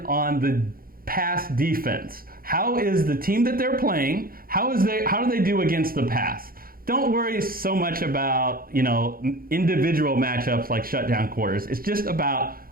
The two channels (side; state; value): left; late; 0.42 ms